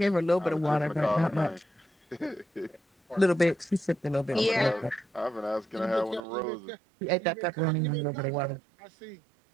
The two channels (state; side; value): drops out; left; at 6.2 s